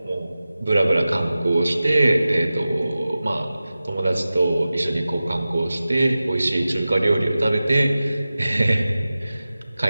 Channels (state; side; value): inverted; both; correlation -0.95